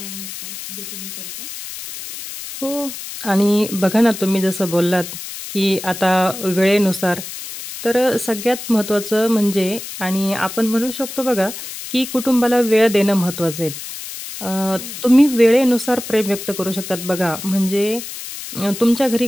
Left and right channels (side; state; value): left; noise; hiss, 10 dB below the sound